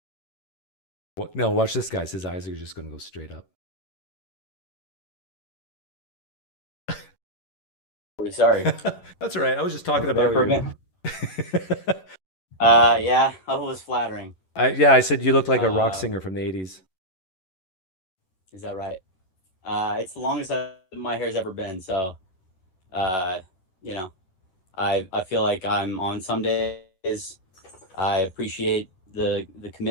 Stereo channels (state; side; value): late; right; 11 ms